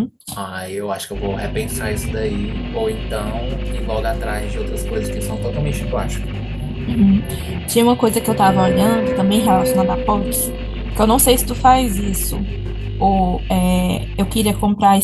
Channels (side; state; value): both; identical; correlation 1.00